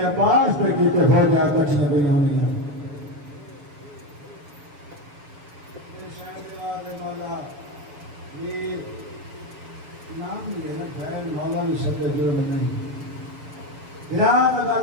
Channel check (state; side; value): late; left; 6.9 ms